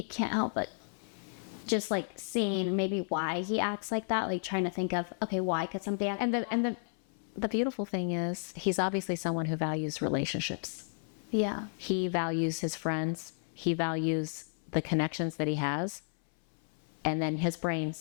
can't help but just like seeing maybe why he acts like that. Like trying to think of, okay, why could somebody act like that? And the beautiful thing is he's obviously someone who values relationships. Yeah. He values his friends. He values the connections that he has. And then his brain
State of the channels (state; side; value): silent; right; 56 dB below the other